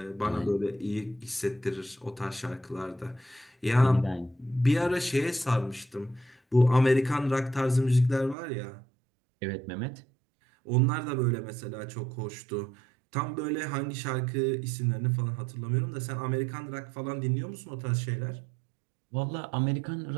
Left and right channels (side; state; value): left; drops out; at 8.3 s